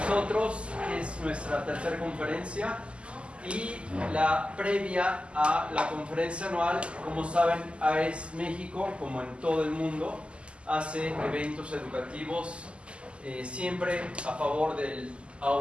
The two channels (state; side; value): late; left; 0.054 ms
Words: nosotros es nuestra tercera conferencia y la previa a la conferencia anual. Como saben, AES México, como en todo el mundo, hace eventos educativos siempre a favor del